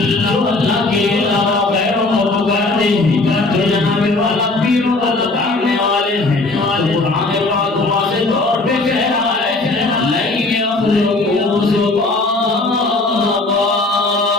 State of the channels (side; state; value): right; quieter; 3.2 dB